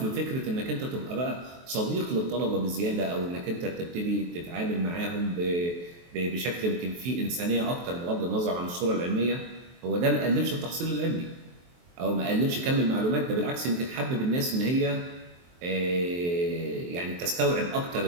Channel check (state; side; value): late; left; 23 ms